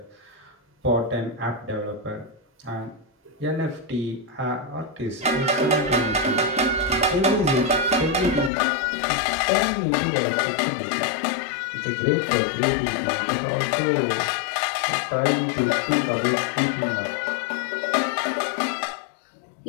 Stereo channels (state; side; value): drops out; right; at 8.5 s